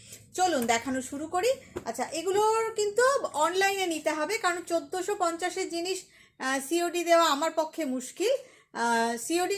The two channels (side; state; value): both; identical; correlation 1.00